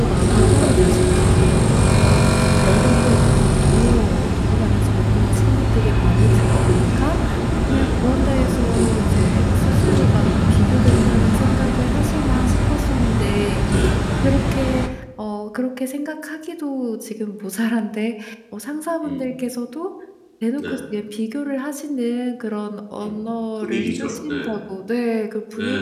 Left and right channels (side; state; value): both; identical; correlation 1.00